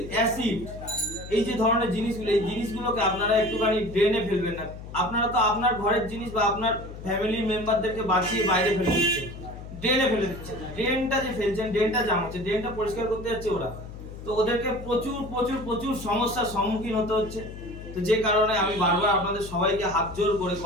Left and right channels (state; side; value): noise; left; hum, 12 dB below the sound